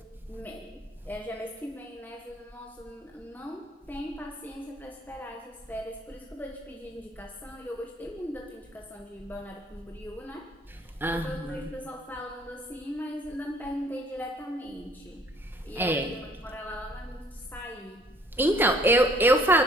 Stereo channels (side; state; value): both; normal; correlation 0.59